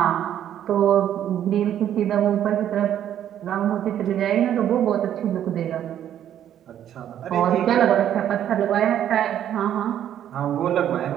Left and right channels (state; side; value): quieter; left; 10.6 dB